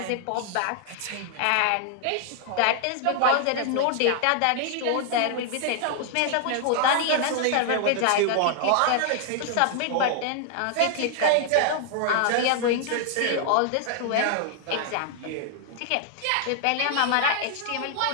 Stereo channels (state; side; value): different; both; correlation 0.00